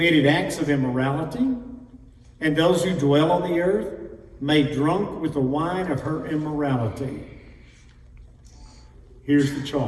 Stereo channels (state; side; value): identical; both; correlation 1.00